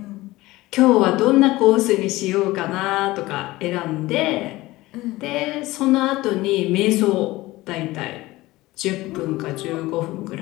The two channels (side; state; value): right; quieter; 18.9 dB